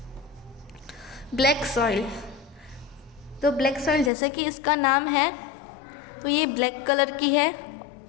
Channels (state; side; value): drops out; right; at 4.1 s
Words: Black soil. तो ब्लैक सॉइल जैसे कि इसका नाम है, तो ये ब्लैक कलर की है।